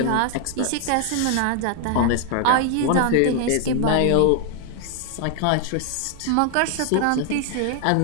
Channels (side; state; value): both; different; correlation 0.00